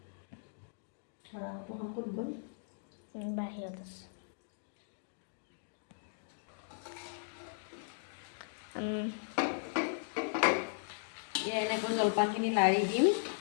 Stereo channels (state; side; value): silent; right; digital silence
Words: বাহিৰত আছে এনেকৈ জলপানখিনি লাৰি দিম